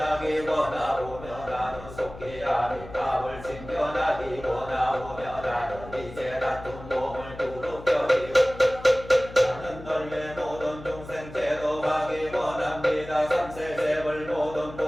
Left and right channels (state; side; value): noise; left; hum, 15 dB below the sound